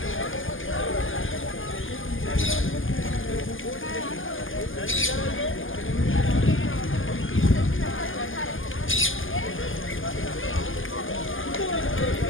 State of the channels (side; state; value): right; late; 0.58 ms